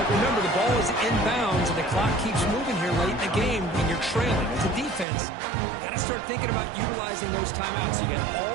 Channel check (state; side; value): drops out; left; at 5.1 s